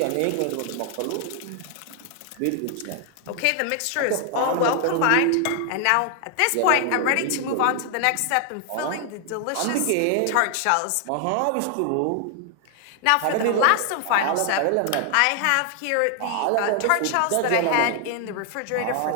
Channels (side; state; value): both; different; correlation 0.00